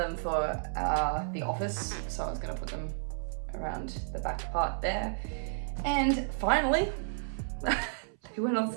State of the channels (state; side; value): silent; left; 56 dB below the other